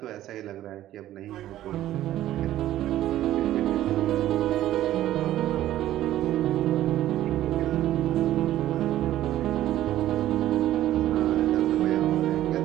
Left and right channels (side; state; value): left; quieter; 13.5 dB